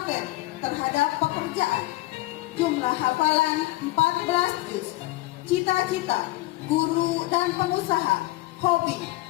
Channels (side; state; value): right; quieter; 18.9 dB